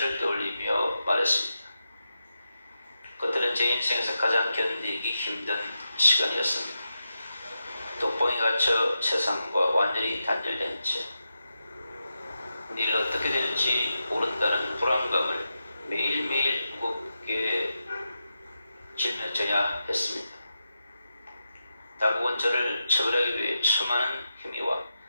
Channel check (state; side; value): inverted; both; correlation -0.88